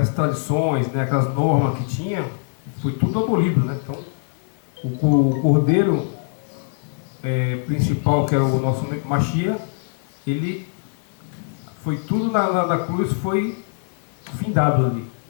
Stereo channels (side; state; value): right; silent; digital silence